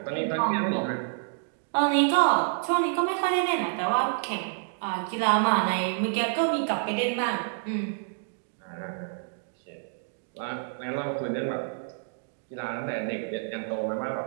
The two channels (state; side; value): silent; left; digital silence